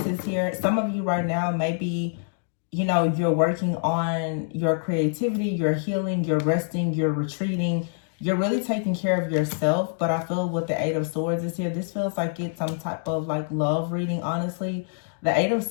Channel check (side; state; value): right; silent; digital silence